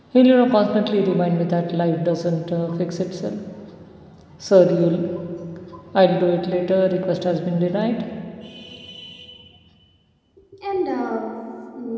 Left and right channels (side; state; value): both; identical; correlation 1.00